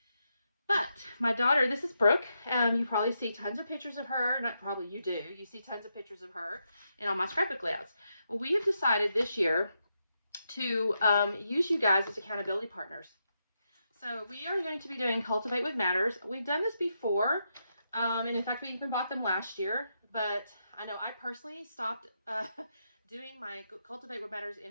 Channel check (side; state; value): both; inverted; correlation -0.83